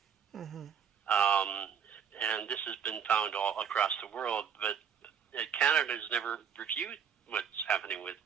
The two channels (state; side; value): quieter; left; 7.6 dB